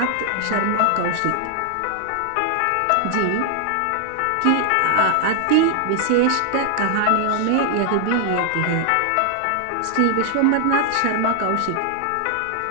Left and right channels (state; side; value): different; both; correlation 0.00